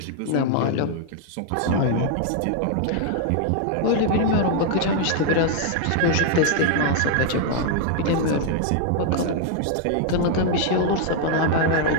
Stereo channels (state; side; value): different; both; correlation 0.00